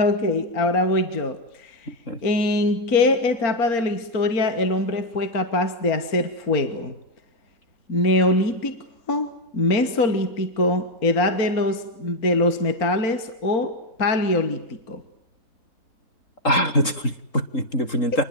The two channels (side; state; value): right; late; 3.8 ms